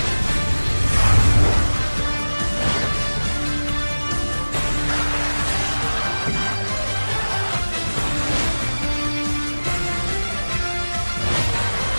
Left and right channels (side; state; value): both; inverted; correlation -1.00